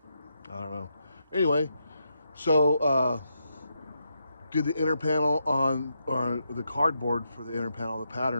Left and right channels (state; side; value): inverted; both; correlation -0.83